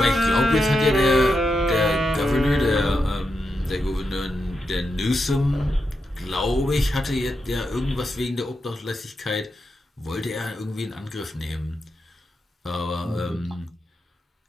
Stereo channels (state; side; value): normal; both; correlation 0.86